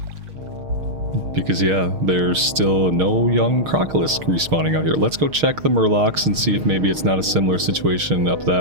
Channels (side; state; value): left; late; 6.5 ms